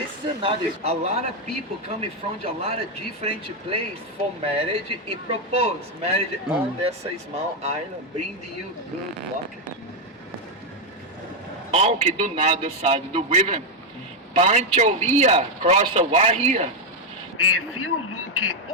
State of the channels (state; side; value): normal; both; correlation 0.03